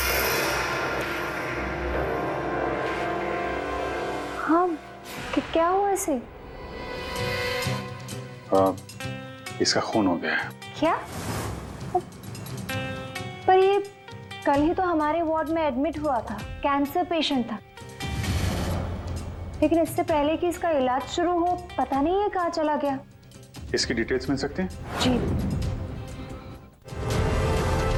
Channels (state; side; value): identical; both; correlation 1.00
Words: हाँ, क्या हुआ इसे? इसका खून हो गया है। क्या? पर ये कल ही तो हमारे वार्ड में एडमिट हुआ था, कैंसर पेशेंट था। लेकिन इससे पहले कि इसका इलाज शुरू हो, पता नहीं है कहाँ चला गया। इसकी डिटेल्स मिल सकती हैं? जी।